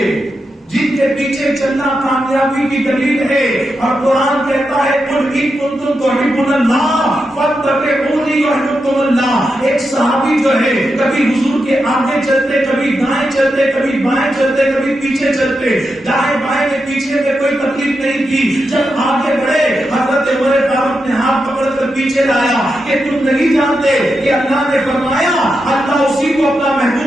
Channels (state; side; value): normal; both; correlation 0.87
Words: جن کے پیچھے چلنا کامیابی کی دلیل ہے. اور قرآن کہتا ہے قل ان کنتم تحبون اللہ فاتبعونی یحببکم اللہ. ایک صحابی جو ہے کبھی حضور کے آگے چلتے، کبھی دائیں چلتے، کبھی بائیں چلتے، کبھی پیچھے چلتے. دائیں بائیں میں پیچھے میں کوئی تکلیف نہیں کی. جب آگے بڑھے حضرت عمر فاروق نے ہاتھ پکڑ کر پیچھے لایا کہ تم نہیں جانتے کہ اللہ نے فرمایا اللہ اسی کو اپنا